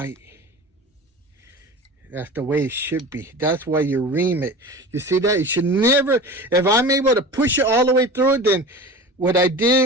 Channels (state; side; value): normal; both; correlation 0.34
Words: That's the way it should be. That's why you ream it. You see that? You should never, if I'm able to push it all the way through it, then what I